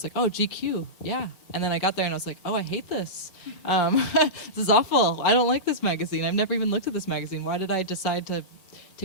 like, oh, GQ, yeah. And then I got there and I was like, oh, I hate this. This is awful. I don't like this magazine. I've never even looked at this magazine. Why did I decide to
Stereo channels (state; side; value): late; right; 5.2 ms